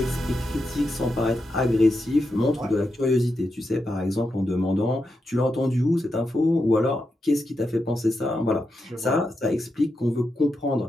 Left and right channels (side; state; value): both; normal; correlation 0.86